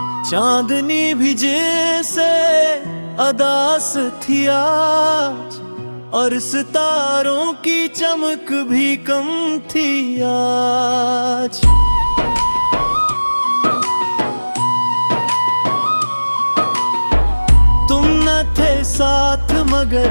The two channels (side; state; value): both; inverted; correlation -1.00